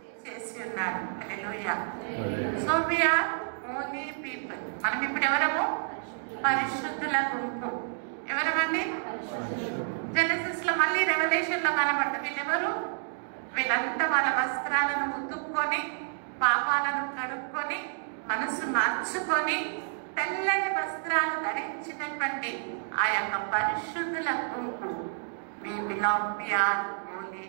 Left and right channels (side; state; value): left; silent; digital silence